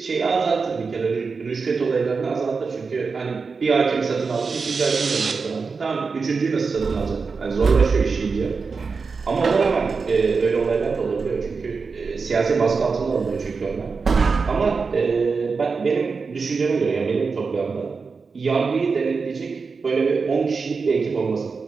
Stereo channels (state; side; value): quieter; left; 4.8 dB